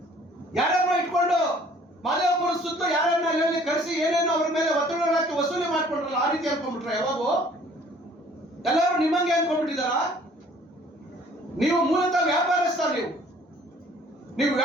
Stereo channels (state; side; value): normal; both; correlation 0.55